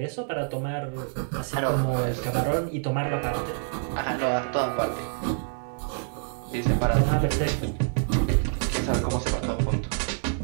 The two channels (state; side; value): silent; left; digital silence